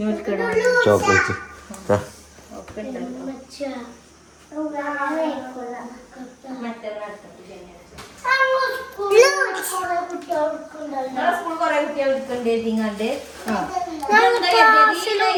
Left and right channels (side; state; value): both; identical; correlation 1.00